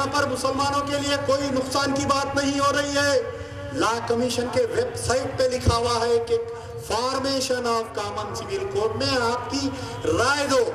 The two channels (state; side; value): identical; both; correlation 1.00